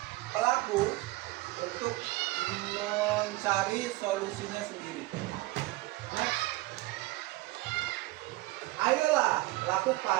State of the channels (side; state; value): left; quieter; 19.7 dB